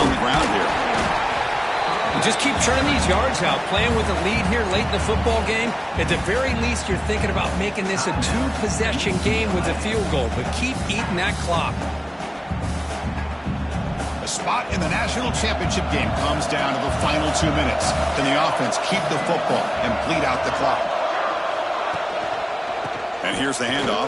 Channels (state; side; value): identical; both; correlation 1.00